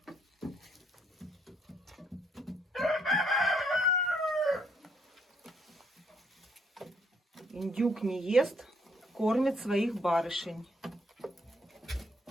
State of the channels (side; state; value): both; normal; correlation 0.70